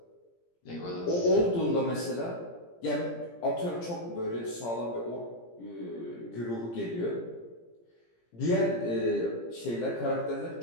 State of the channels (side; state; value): right; late; 17 ms